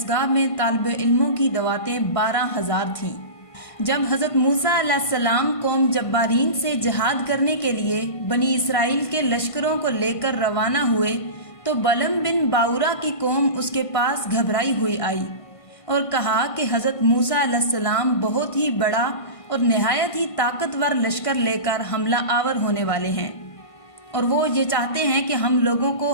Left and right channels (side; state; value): right; late; 1.5 ms